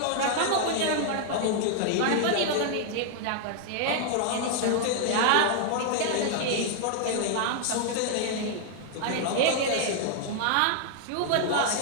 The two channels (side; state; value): both; different; correlation 0.00